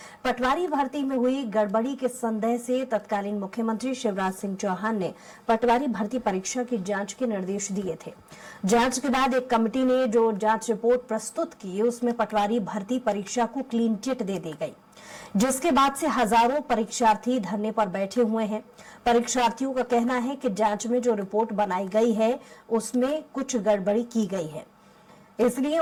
पटवारी भर्ती में हुई गड़बड़ी के संदेह से तत्कालीन मुख्यमंत्री शिवराज सिंह चौहान ने पटवारी भर्ती परीक्षा की जांच के निर्देश दिए थे। जांच के बाद एक कमेटी ने जो जांच रिपोर्ट प्रस्तुत की, उसमें पटवारी भर्ती परीक्षा को क्लीन चिट दे दी गई, जिसके बाद से हजारों परीक्षार्थी धरने पर बैठे हुए हैं। परीक्षार्थियों का कहना है कि जांच में जो रिपोर्ट बनाई गई है उसमें कुछ गड़बड़ी की गई है, इसलिए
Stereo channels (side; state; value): both; identical; correlation 1.00